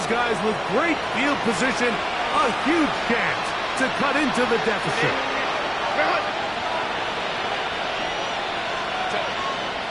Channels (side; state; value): both; identical; correlation 1.00